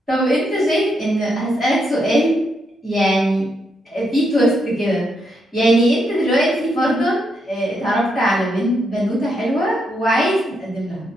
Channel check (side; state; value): both; normal; correlation 0.79